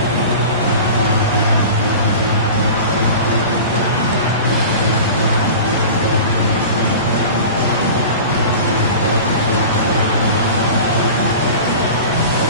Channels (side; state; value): both; inverted; correlation -0.36